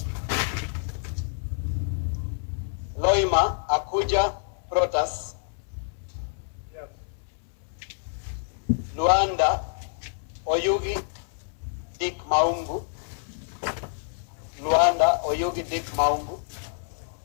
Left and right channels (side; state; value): right; silent; digital silence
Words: Loima Akuja Protas. Luanda Oyugi Dick Maungu. Luanda Oyugi Dick Maungu.